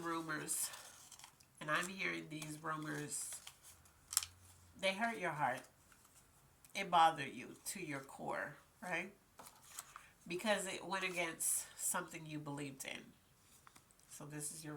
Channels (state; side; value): identical; both; correlation 1.00